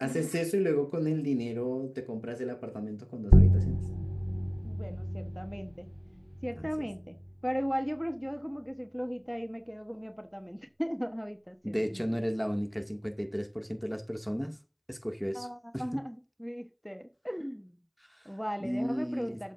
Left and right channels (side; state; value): both; identical; correlation 1.00